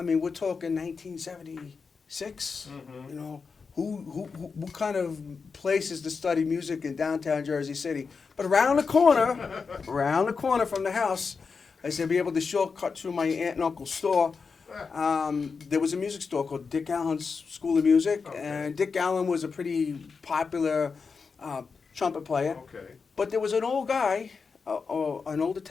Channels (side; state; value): right; quieter; 5.1 dB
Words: mean, we're talking 1976. Mhm. You know, what kind of places to study music in downtown Jersey City? But around the corner from the house, I said, be able to shortcut through my aunt and uncle's store. There was a music store called Dick Allen's School of Music, Okay. and Dick Allen was a pretty popular trumpet player. Okay. But there was an old guy, an old